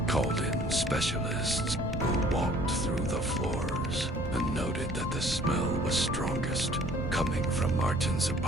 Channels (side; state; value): both; normal; correlation 0.55